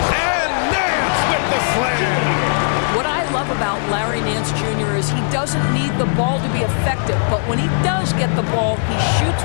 Nance with the slam. What I love about Larry Nance Jr. is he doesn't need the ball to be effective, but when he does get the ball, he shoots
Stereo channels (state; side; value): silent; right; 67 dB below the other